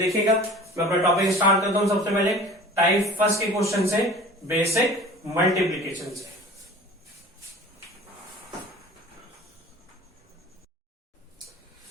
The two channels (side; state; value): both; normal; correlation 0.42